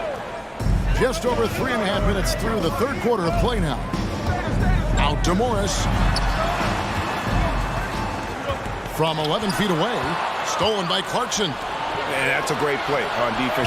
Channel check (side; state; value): both; identical; correlation 1.00